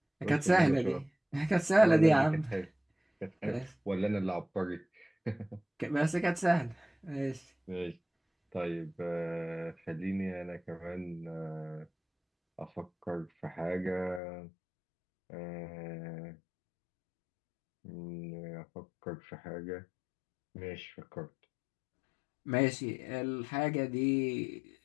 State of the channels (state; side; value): drops out; right; at 14.2 s